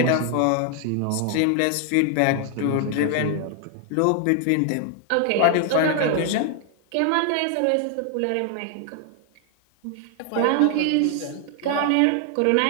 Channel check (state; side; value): different; both; correlation 0.00